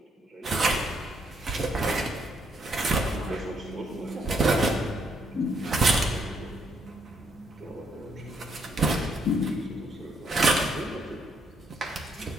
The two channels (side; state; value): both; normal; correlation 0.73